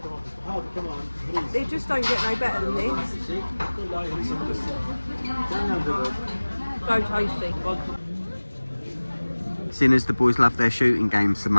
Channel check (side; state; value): both; inverted; correlation -1.00